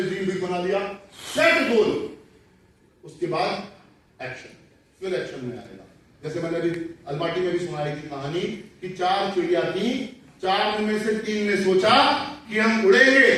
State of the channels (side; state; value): both; identical; correlation 1.00